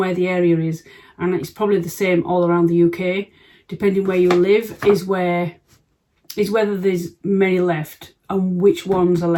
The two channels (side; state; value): both; identical; correlation 1.00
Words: the area is, and it's probably the same all around the UK. Depending where you live is whether there's many left and which ones are